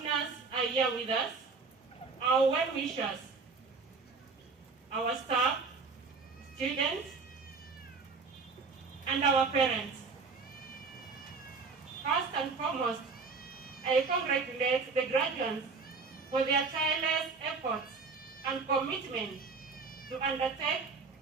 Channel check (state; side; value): quieter; left; 4.5 dB